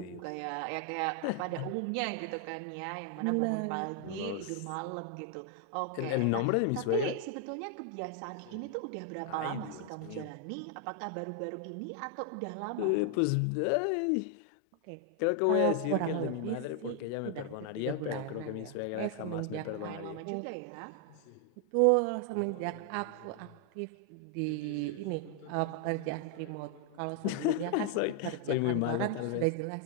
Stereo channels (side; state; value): both; different; correlation 0.00